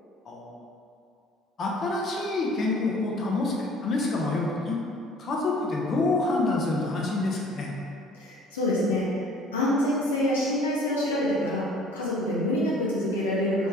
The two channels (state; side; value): normal; both; correlation 0.51